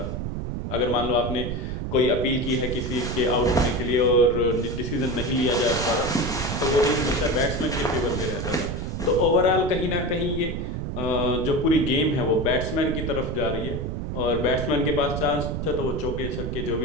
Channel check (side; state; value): right; noise; rumble, 4 dB below the sound